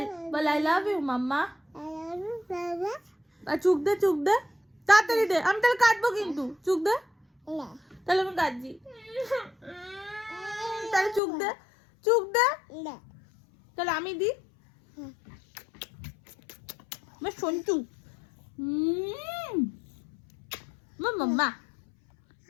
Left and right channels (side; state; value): right; drops out; at 11.2 s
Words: বল আই লাভ ইউ মাম্মা। চুপ দে চুপ দে, তাড়াতাড়ি দে, আমি তাহলে কাঁদবো কিন্তু। চুপ দে, তাহলে আমি কাঁদছি। তাহলে চুপ দে, চুপ দে, তাহলে আমি দি। সন্টু মাম্মা,